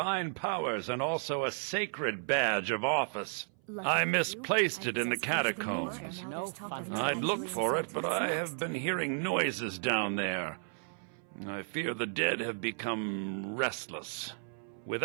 powers and also a sacred badge of office. I misplaced it in the catacombs. I'd looked for it, but I have been hearing noises down there. I fear the dead have become restless.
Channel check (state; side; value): silent; left; 55 dB below the other